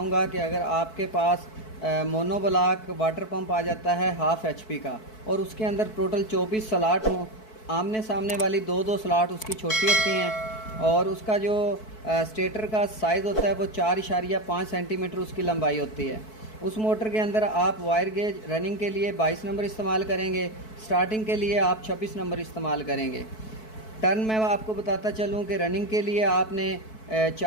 कि अगर आपके पास मोनोब्लॉक वाटर पंप आ जाता है हाफ़ HP का और उसके अंदर टोटल 24 स्लॉट हों, आमने सामने वाली दो दो स्लॉट उसकी छोटी होती हैं और उसका जो स्टेटर का साइज़ होता है वो 4.5 सेंटीमीटर उसकी लंबाई होती है। उस मोटर के अंदर आप वायर गेज रनिंग के लिए 22 नंबर इस्तेमाल करेंगे, स्टार्टिंग के लिए आप 26 नंबर इस्तेमाल करेंगे। टर्न मैं आपको बताता चलूँ कि रनिंग के लिए आपने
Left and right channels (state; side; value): late; right; 4.6 ms